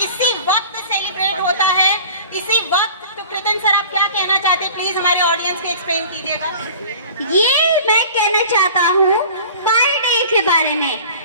इसी वक्त सेलिब्रेट होता है, इसी वक्त। तो कृतिन सर आप क्या कहना चाहते हैं, प्लीज हमारे ऑडियंस को एक्सप्लेन कीजिएगा। ये मैं कहना चाहता हूँ पाई डे के बारे में।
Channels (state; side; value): inverted; both; correlation -0.43